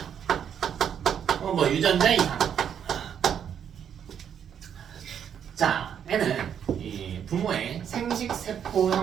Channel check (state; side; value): quieter; left; 8.5 dB